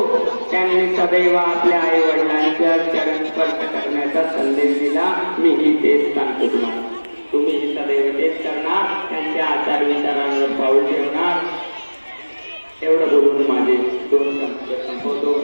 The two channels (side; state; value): both; inverted; correlation -1.00